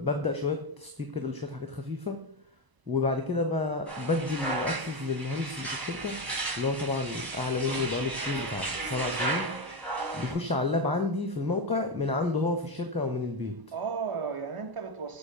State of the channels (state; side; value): late; left; 1.0 ms